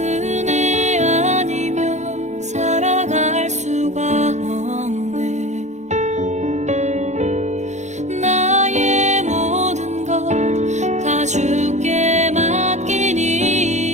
아니면 살아갈 수가 없네. 나의 모든 것 다 주께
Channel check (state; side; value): late; left; 0.34 ms